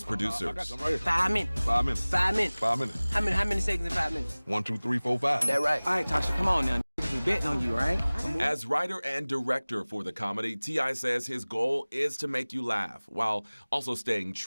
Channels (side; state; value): both; inverted; correlation -1.00